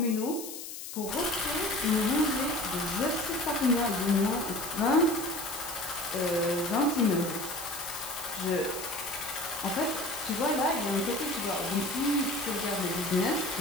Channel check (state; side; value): noise; left; hiss, 9 dB below the sound